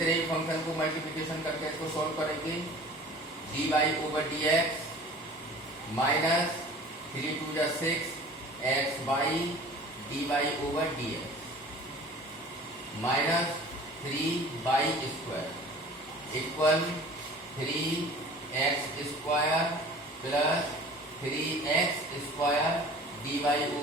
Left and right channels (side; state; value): both; normal; correlation 0.44